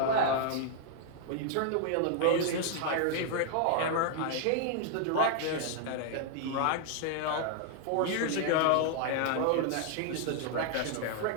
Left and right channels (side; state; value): both; different; correlation 0.00